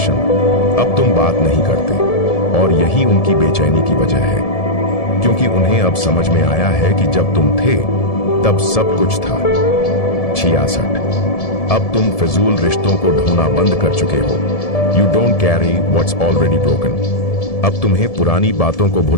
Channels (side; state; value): right; late; 1.7 ms